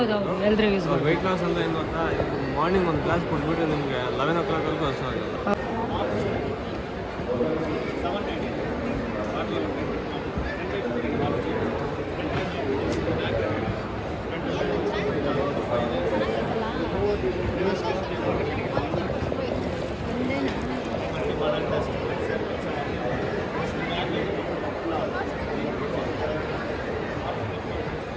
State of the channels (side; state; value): both; identical; correlation 1.00